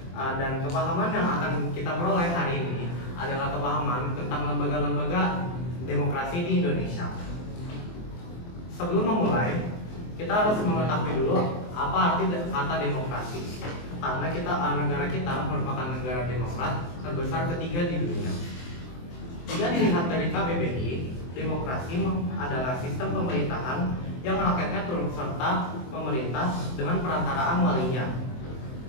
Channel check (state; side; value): late; right; 23 ms